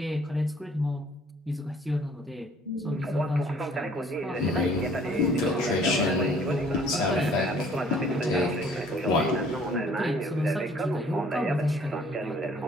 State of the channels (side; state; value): both; normal; correlation 0.57